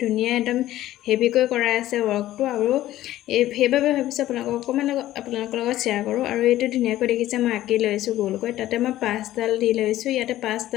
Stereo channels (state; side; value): quieter; right; 14.3 dB